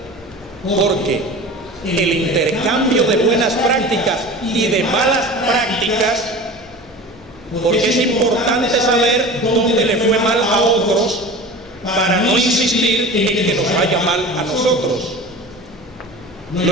porque el intercambio de buenas prácticas y de malas prácticas, porque es importante saber dónde le fue mal a otros para no insistir en que nos vaya mal a nosotros.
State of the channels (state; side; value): normal; both; correlation 0.36